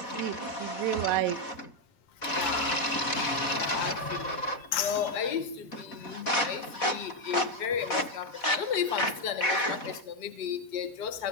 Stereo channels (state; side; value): late; right; 4.1 ms